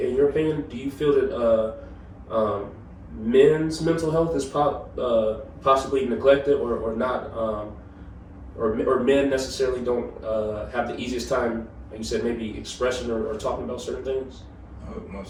your opinion, do you feel that men's mental health is possibly neglected or not, or men necessarily don't have the easiest time, like you said, maybe expressing or talking about certain things? Oh,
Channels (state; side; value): identical; both; correlation 1.00